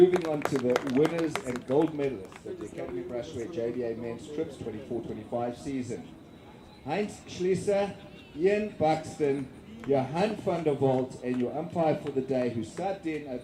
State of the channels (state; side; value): identical; both; correlation 1.00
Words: on to the winners and gold medalists of the Academy Brushware JBA Men's Trips 24-25 season. Heinz Schlieser, Ian Buxton, Johan van der Walt, and your umpire for the day who sat in